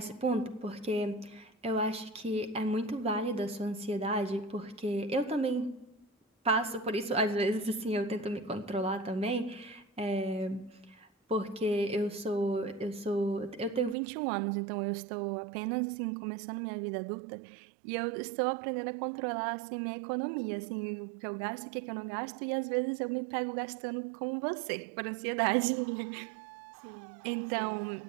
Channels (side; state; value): left; drops out; at 14.0 s